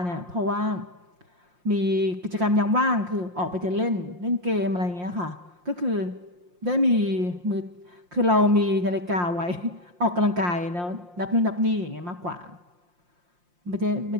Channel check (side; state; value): left; late; 5.7 ms